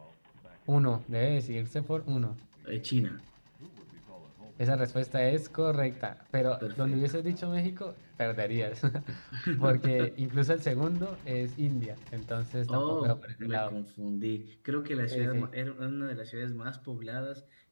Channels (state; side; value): inverted; both; correlation -1.00